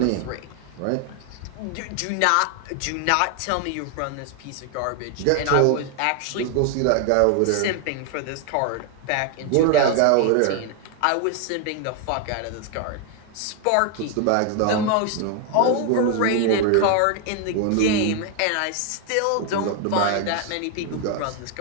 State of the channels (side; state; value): both; different; correlation 0.01